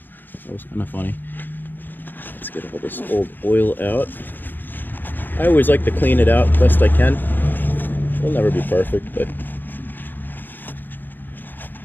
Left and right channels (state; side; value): late; right; 0.091 ms